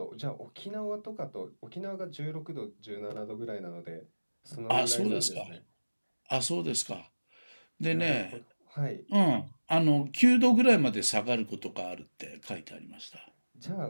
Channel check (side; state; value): both; inverted; correlation -1.00